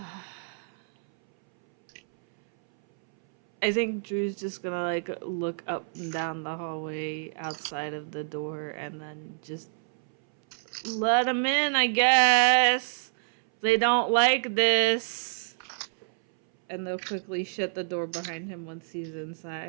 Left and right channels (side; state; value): left; silent; 59 dB below the other